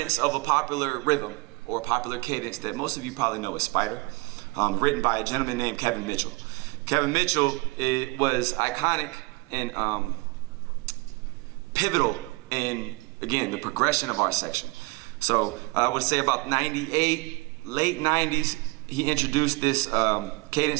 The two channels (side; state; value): left; quieter; 25.6 dB